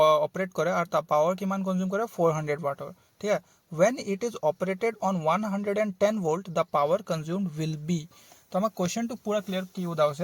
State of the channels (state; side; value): identical; both; correlation 1.00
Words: অপাৰেট কৰে আৰু তা পাৱাৰ কিমান কনজিউম কৰে 400 ওয়াটৰ ঠিক আছে when it is operated on 110 volt the power consumed will be তো আমাক কোৱেশ্চনটো পুৰা ক্লিয়াৰ কি উদা